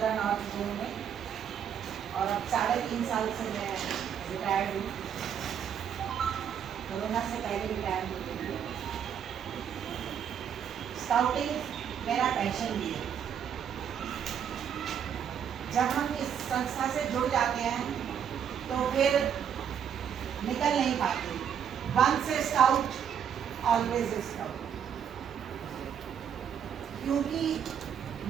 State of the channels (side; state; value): left; quieter; 8.4 dB